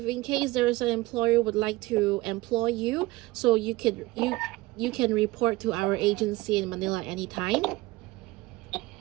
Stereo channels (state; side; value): quieter; left; 20.1 dB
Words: in case there's an employer would like to employ you, so you can report to our agency in Manila anytime.